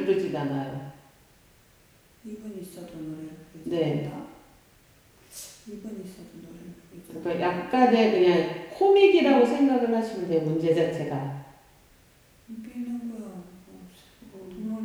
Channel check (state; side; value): identical; both; correlation 1.00